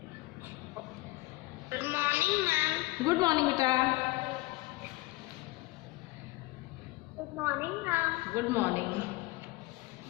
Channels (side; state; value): right; quieter; 20.5 dB